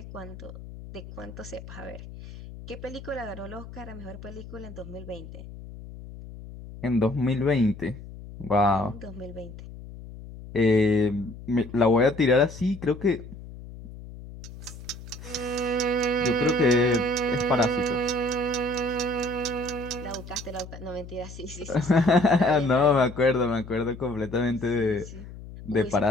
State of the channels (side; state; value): left; noise; hum, 14 dB below the sound